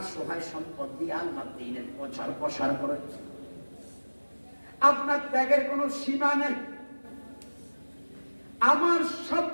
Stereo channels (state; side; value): inverted; both; correlation -1.00